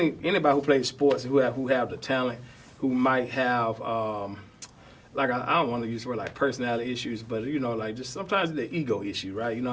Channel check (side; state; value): both; identical; correlation 1.00